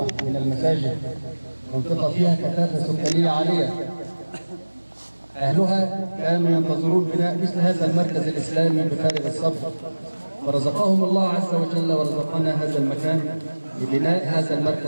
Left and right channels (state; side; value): inverted; both; correlation -1.00